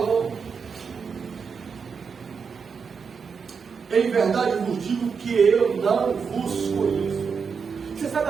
em verdade vos digo que eu não vos conheço. Você sabe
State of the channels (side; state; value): left; quieter; 5.8 dB